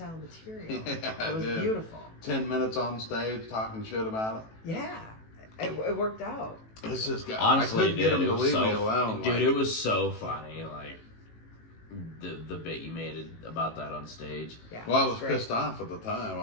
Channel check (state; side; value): late; right; 18 ms